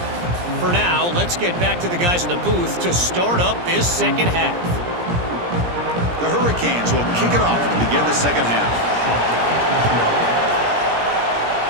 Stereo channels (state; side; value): late; left; 17 ms